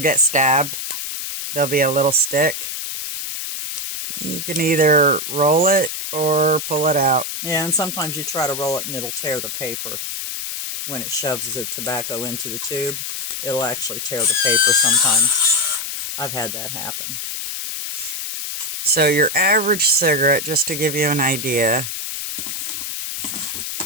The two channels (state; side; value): noise; left; hiss, 5 dB below the sound